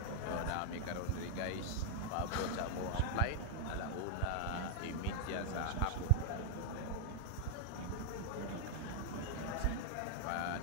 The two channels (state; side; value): different; both; correlation 0.00